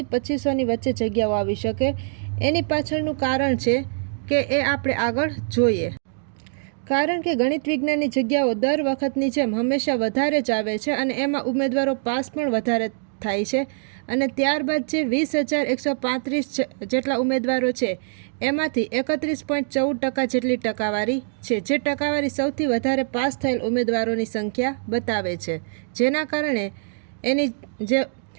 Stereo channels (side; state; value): left; silent; digital silence